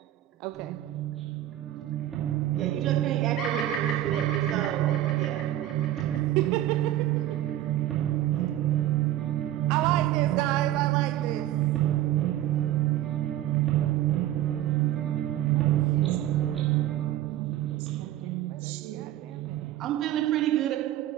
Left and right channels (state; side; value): quieter; left; 13.2 dB